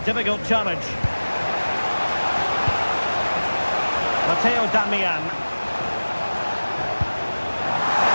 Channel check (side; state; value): both; inverted; correlation -1.00